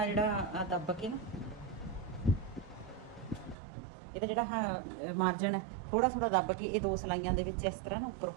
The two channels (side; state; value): left; drops out; at 3.6 s